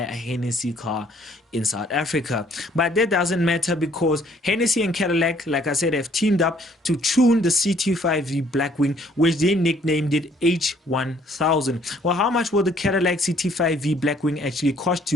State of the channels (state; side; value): normal; both; correlation 0.62